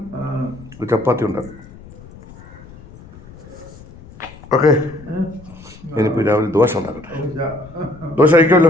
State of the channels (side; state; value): left; noise; rumble, 19 dB below the sound